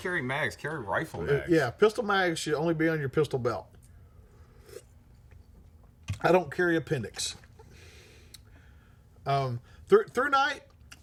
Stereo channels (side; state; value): both; identical; correlation 1.00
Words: carry mags, carry rifle mags. Yeah, pistol mags should only be on your pistol belt. I don't carry appendix. Through night,